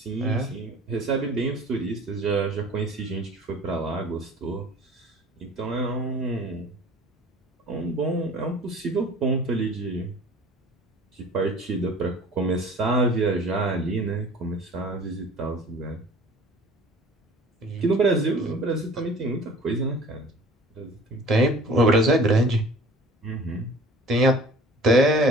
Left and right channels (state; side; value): normal; both; correlation 0.46